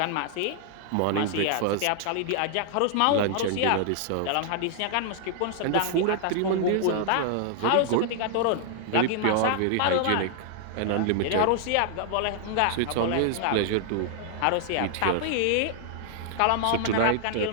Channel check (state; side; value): different; both; correlation 0.00